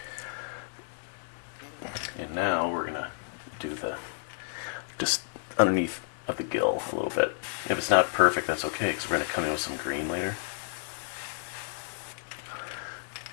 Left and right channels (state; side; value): silent; right; digital silence